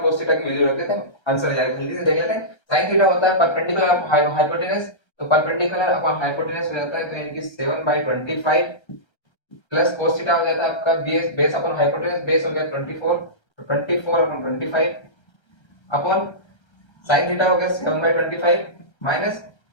cos थीटा की वैल्यू रख देते हैं, आंसर आ जाएगा। जल्दी से देख लेते हैं। sin थीटा होता है परपेंडिकुलर अपॉन हाइपोटेनस, तो परपेंडिकुलर अपॉन हाइपोटेनस हो जाता है तो यानी कि 7/25 प्लस cos थीटा हो जाता है आपका बेस अपॉन हाइपोटेनस, बेस हो गया 24, तो 24/25 अपॉन sin थीटा हो गया 7/25 माइनस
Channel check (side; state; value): right; late; 1.3 ms